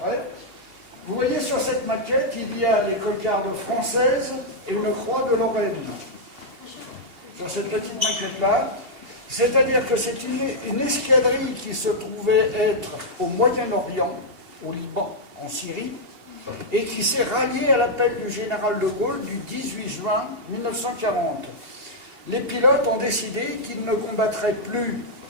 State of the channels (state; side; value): late; left; 2.8 ms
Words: Vous voyez, sur cette maquette, il y a les cocardes françaises et une croix de Lorraine. Sur cette petite maquette-là, c'est-à-dire que c'est une escadrille qui se trouvait être au Moyen-Orient, au Liban, en Syrie, et qui s'est ralliée à l'appel du général de Gaulle du 18 juin 1940. Les pilotes ont décidé qu'ils ne combattraient plus